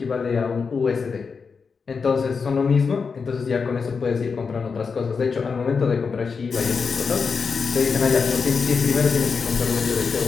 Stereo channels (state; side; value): quieter; right; 5.3 dB